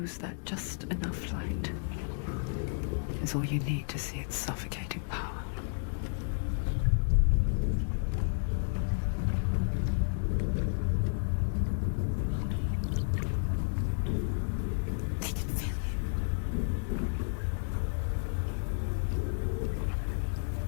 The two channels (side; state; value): right; silent; digital silence